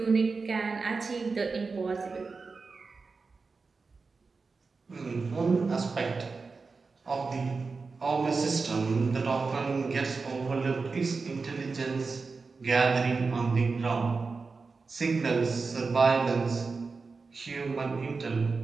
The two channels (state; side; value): quieter; left; 4.4 dB